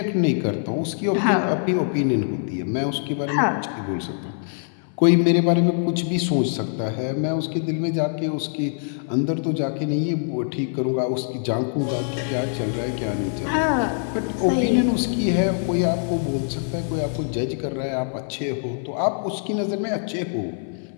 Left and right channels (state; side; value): silent; right; 58 dB below the other